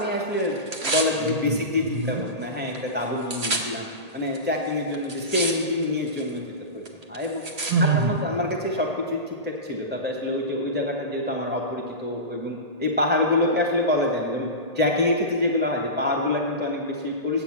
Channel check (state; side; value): late; left; 1.8 ms